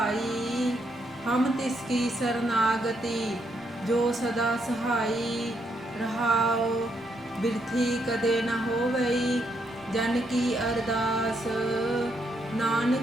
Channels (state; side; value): normal; both; correlation 0.76